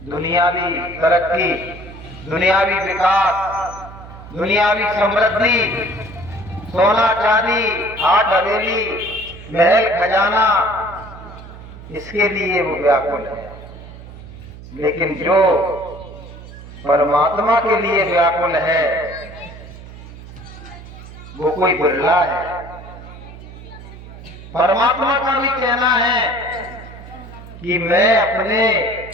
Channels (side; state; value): right; noise; hum, 16 dB below the sound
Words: दुनियावी तरक्की, दुनियावी विकास, दुनियावी समृद्धि, सोना चांदी, आठ हवेली, महल खजाना, इसके लिए वो व्याकुल है। लेकिन जो परमात्मा के लिए व्याकुल है वो कोई बिरला है। परमात्मा का भी कहना है कि मैं अपने